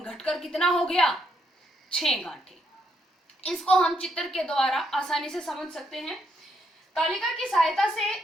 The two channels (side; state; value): both; normal; correlation 0.76